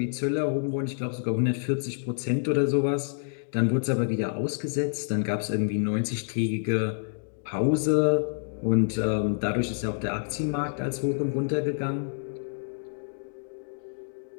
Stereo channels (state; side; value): silent; right; digital silence